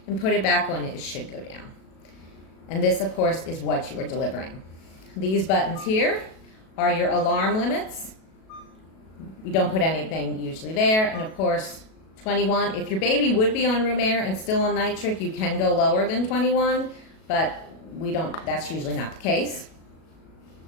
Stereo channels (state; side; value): late; right; 37 ms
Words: and put it back on. It should go down. And this, of course, is what you are delivering. These buttons here are your alarm limits. We don't put anything usually there. And of course, 21. If your baby would be on room air and still on nitric, you can go lower than 21, but we don't, that's usually not the case.